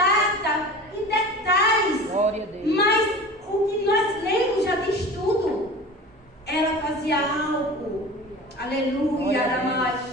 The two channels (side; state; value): both; normal; correlation 0.36